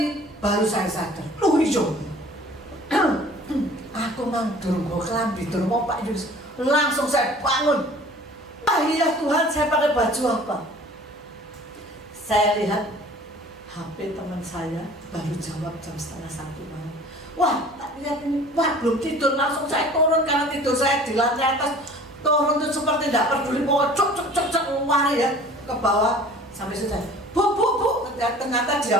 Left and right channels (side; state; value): both; normal; correlation 0.47